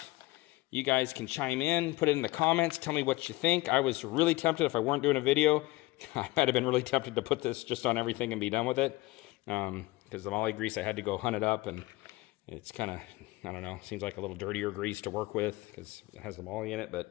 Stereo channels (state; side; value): quieter; right; 20.4 dB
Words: You guys can chime in, put it in the comments, tell me what you think. I was really tempted, if I weren't doing a video, I might have been really tempted to put this just on everything and be done with it. Because the moly grease, I had to go hunt it up, and it's kind of, I don't know, seems like a little dirtier grease to work with because it has the moly in it.